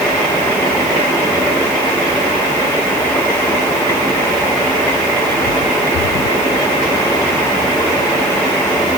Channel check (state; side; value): noise; left; hiss, 13 dB below the sound